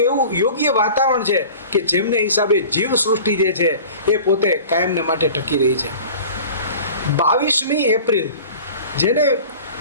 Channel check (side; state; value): both; inverted; correlation -0.40